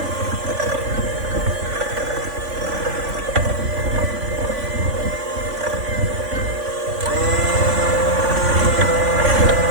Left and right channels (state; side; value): late; left; 3.5 ms